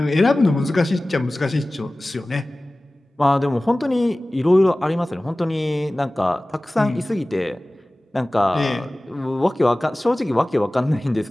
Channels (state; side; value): normal; both; correlation 0.98